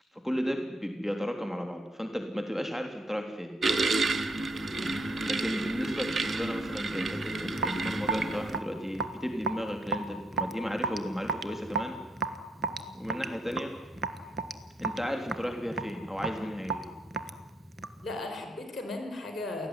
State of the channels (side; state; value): both; normal; correlation 0.74